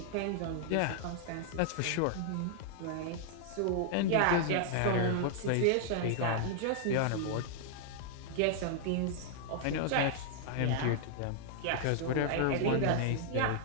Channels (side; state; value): both; different; correlation -0.01